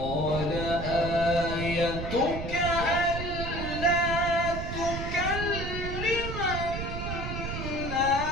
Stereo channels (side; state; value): right; noise; rumble, 5 dB below the sound